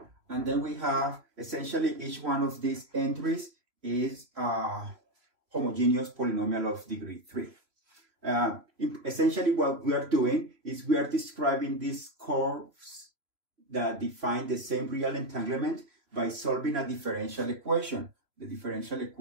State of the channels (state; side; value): late; left; 3.1 ms